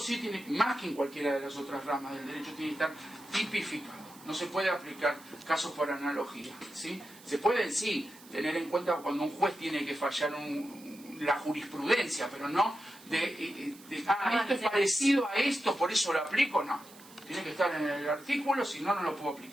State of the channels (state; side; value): noise; right; hiss, 21 dB below the sound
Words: tiene, más que en cualquiera de las otras ramas del derecho, tiene que estar tipificado. No se puede aplicar casos por analogía, ¿sí? Se pueden, sí, tener en cuenta cuando un juez tiene que fallar la jurisprudencia, pero no esto es parecido a esto, por eso lo aplico, no. Tiene que estar en el artículo, si no, no lo puedo